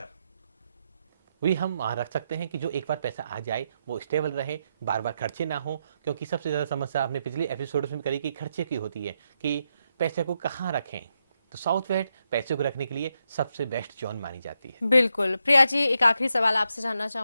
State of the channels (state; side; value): inverted; both; correlation -0.83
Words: भी हम वहाँ रख सकते हैं कि जो एक बार पैसा आ जाए वो स्टेबल रहे, बार बार खर्चे ना हो। क्योंकि सबसे ज़्यादा समस्या आपने पिछले एपिसोड में करी कि खर्चे की होती है कि पैसे को कहाँ रखें। तो साउथ वेस्ट पैसे को रखने के लिए सबसे बेस्ट जोन मानी जाती है। बिल्कुल। प्रिया जी, एक आखिरी सवाल आपसे जानना